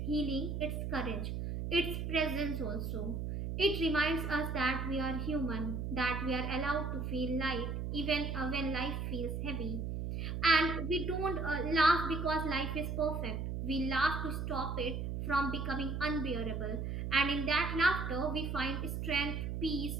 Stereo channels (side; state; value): right; noise; hum, 3 dB below the sound